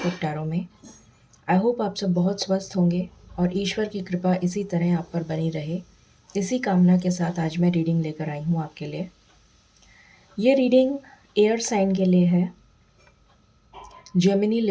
टैरो में। आई होप आप सब बहुत स्वस्थ होंगे और ईश्वर की कृपा इसी तरह आप पर बनी रहे। इसी कामना के साथ आज मैं रीडिंग लेकर आई हूँ आपके लिए। ये रीडिंग एयर साइन के लिए है, जेमिनी,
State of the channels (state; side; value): identical; both; correlation 1.00